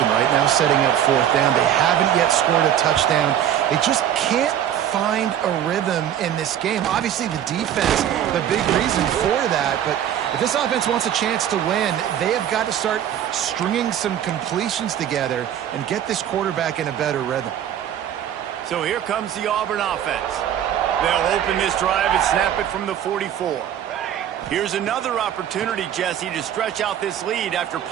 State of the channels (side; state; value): left; quieter; 10.3 dB